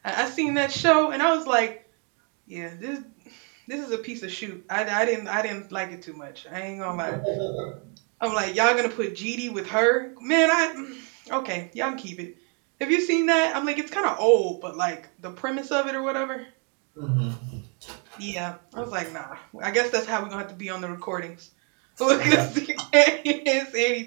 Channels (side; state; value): left; quieter; 36.0 dB